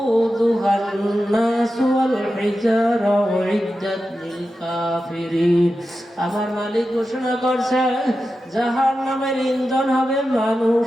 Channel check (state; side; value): normal; both; correlation 0.91